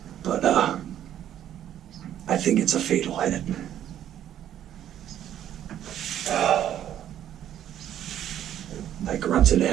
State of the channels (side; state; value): left; quieter; 11.0 dB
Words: But I think it's a fatal hit. I grunted